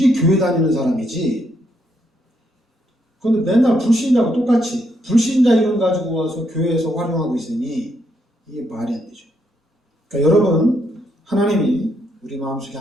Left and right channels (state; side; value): normal; both; correlation 0.76